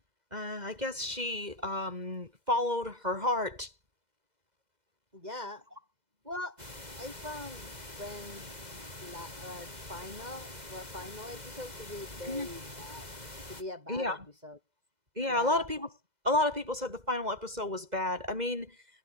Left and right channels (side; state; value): left; late; 2.0 ms